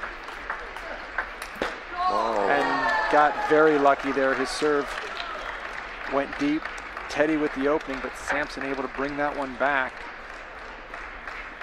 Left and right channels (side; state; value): both; identical; correlation 1.00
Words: Oh. And got very lucky there. His serve went deep. Teddy with the opening, but Samson able to bring that one back.